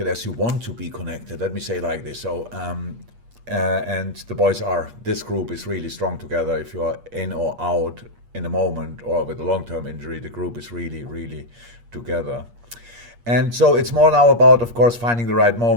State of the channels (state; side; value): late; left; 8.5 ms